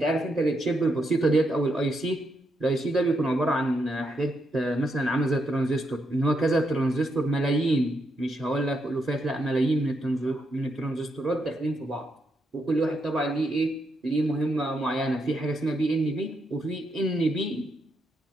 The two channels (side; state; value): both; normal; correlation 0.80